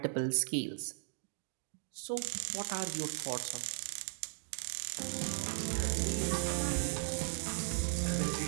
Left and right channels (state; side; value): silent; left; digital silence